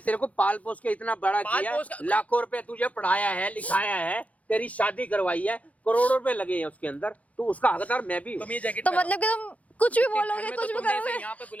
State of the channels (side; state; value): right; late; 0.068 ms